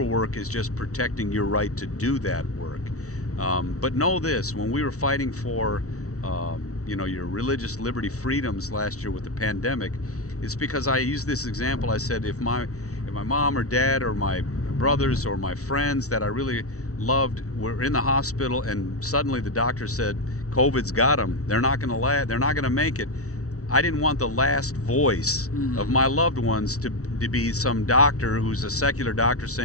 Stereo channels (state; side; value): late; right; 0.65 ms